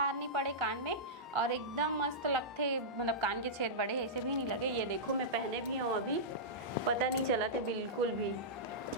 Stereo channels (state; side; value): normal; both; correlation -0.14